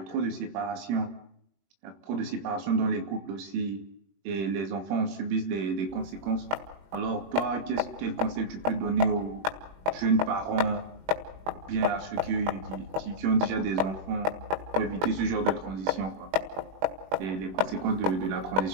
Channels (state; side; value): late; left; 21 ms